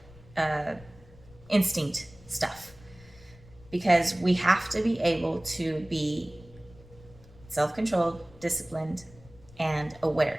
instinct stuff, because we have to be able to be self-controlled, disciplined, and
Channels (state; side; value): noise; left; rumble, 23 dB below the sound